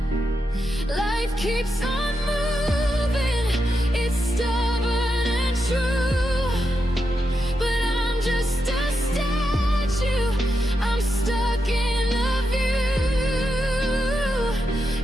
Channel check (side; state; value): both; normal; correlation 0.86